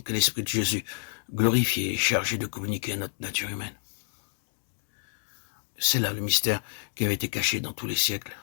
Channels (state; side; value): silent; right; 59 dB below the other